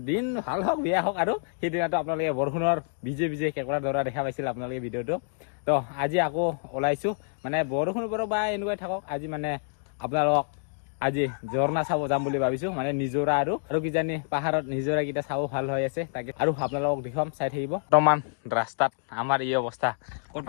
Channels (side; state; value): right; silent; digital silence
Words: দিন ভাল হওক বেয়া হওক আৰু সেইদিনাটো আপোনালোকে বৰষুণৰ ভিজে কেঁকোৰা ধৰা দেখা পাইছিল আপোনালোকে ভিডিঅ'টো তো আজি আকৌ ওলাইছোঁ মানে বৰষুণ পৰক বা এনেকুৱাই থাকক আজি মানে আপোনালোকক আজি ঝৰ্ণা চাব যাম বুলি ভাবিছোঁ মানে নিজৰা আৰু কিজানি পাহাৰত নিজৰাকেইটা চাব ভাল হৈ আছে তাকে আৰু আপোনালোকক দেখুৱাম চাই থাকিব বৰ্তমান ৰাস্তাত আমাৰ এই অৱস্থা